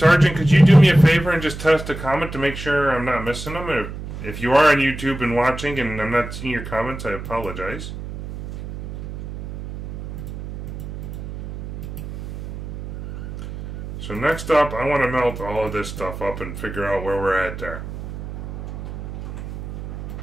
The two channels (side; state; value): right; noise; hum, 9 dB below the sound